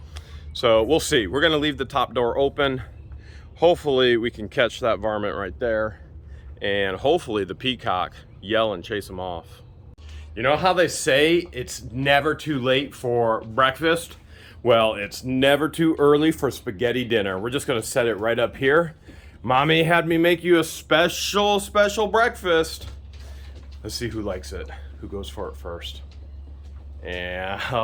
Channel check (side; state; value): both; identical; correlation 1.00